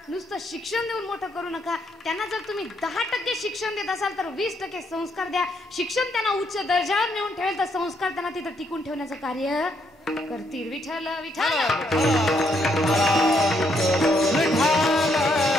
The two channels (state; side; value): normal; both; correlation 0.73